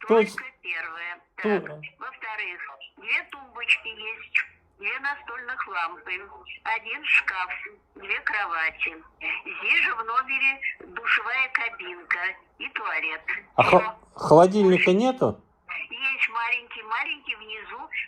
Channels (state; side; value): identical; both; correlation 1.00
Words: Только первая. Так. Во-вторых, 2 тумбочки есть, 2 настольных лампы, 1 шкаф, 2 кровати. Здесь же в номере душевая кабинка и туалет. А холодильника нету? Есть маленький внизу,